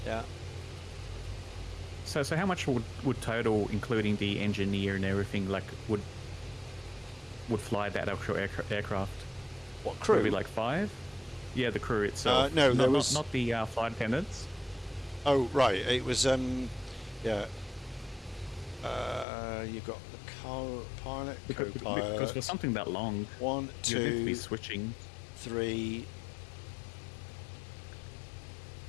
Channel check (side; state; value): right; drops out; at 19.2 s